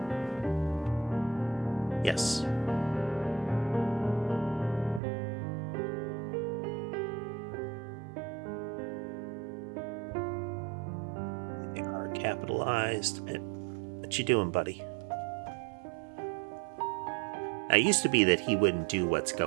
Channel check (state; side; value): drops out; left; at 5.0 s